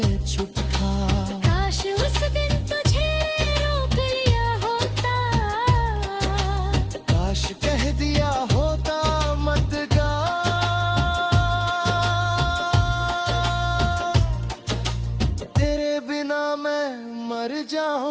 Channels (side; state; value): both; identical; correlation 1.00